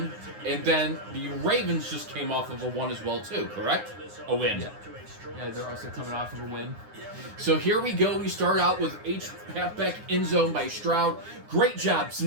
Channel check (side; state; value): left; late; 9.6 ms